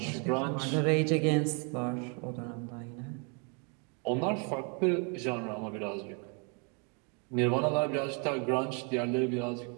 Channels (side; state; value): left; quieter; 36.6 dB